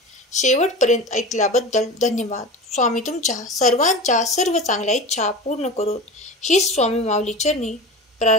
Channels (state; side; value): normal; both; correlation 0.31